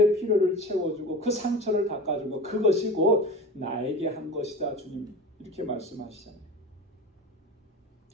필요를 채워주고 그 상처를 닦아주고 그것이 곧 나에게 한 것이다. 주님 이렇게 말씀하시잖아요.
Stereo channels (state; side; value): normal; both; correlation 0.32